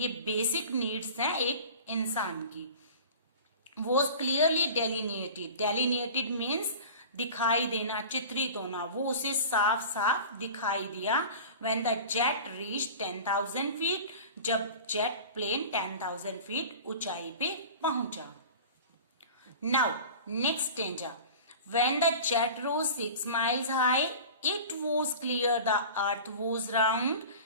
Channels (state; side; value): inverted; both; correlation -0.37